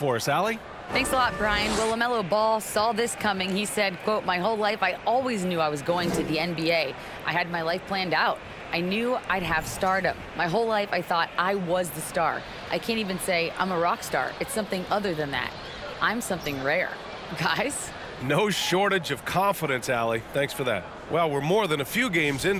us, Allie? Thanks a lot, Brian. Well, LaMelo Ball saw this coming. He said, quote, "My whole life I always knew I was going to the NBA. I had my life planned out. I knew I'd have stardom. My whole life I thought I was the star. I can't even say I'm a rock star. It's something other than that. I'm something rare." Guys? No shortage of confidence, Allie. Thanks for that. Well, we're more than a few games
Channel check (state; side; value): identical; both; correlation 1.00